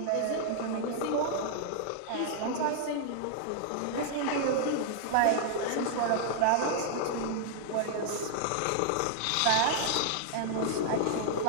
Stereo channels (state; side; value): different; both; correlation -0.01